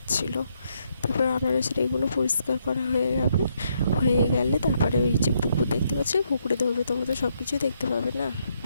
তারপর আনারসের এগুলো পরিষ্কার করা হয়ে গেলে তারপরে ওই যে পুকুর দেখতে পাচ্ছি, পুকুরে ধরবে, তোমরা তো সব কিছুই দেখতে পাবে না।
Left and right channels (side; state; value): both; inverted; correlation -0.75